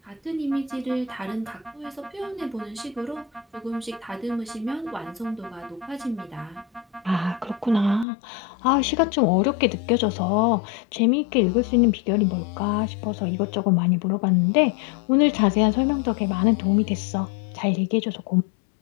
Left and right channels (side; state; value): right; drops out; at 8.1 s